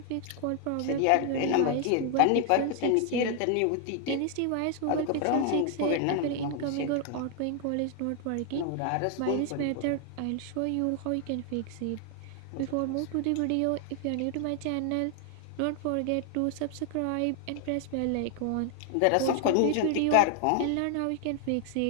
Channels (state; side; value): different; both; correlation 0.00